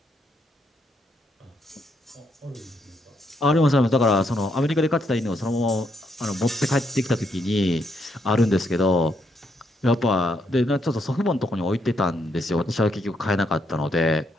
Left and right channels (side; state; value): both; normal; correlation 0.76